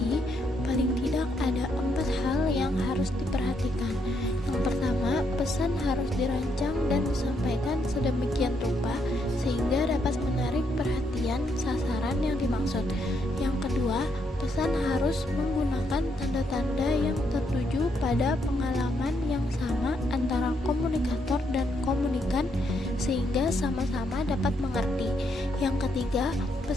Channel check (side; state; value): both; normal; correlation 0.76